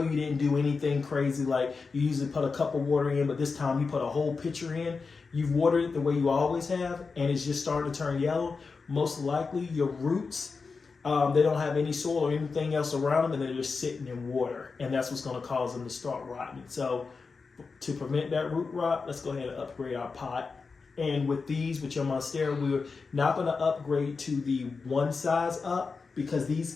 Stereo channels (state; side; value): quieter; right; 4.6 dB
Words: you didn't do anything crazy, like you usually put a cup of water in, but this time you put a whole pitcher in, you've watered it the way you always have, and it's just starting to turn yellow, most likely your roots, they don't have any soil or anything else around them, and they're just sitting in water, and that's what's going to cause them to start rotting. So to prevent that root rot, let's go ahead and upgrade our pot. And with your Monstera, we're not going to upgrade to the one size up, because these